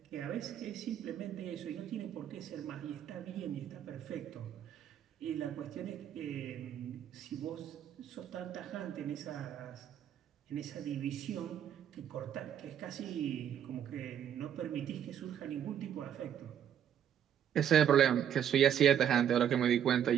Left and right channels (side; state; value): left; quieter; 9.6 dB